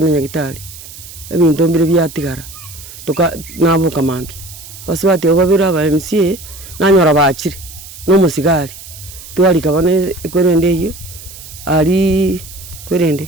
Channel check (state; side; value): noise; right; hiss, 16 dB below the sound